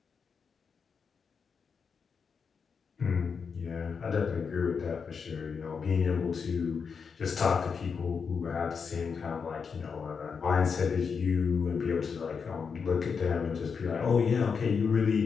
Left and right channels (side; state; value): right; quieter; 5.9 dB